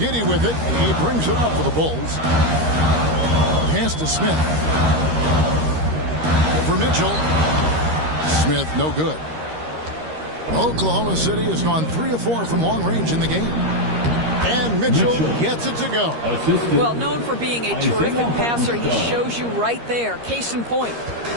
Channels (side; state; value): left; late; 13 ms